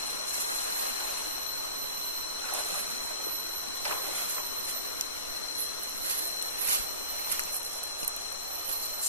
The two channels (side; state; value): both; inverted; correlation -0.37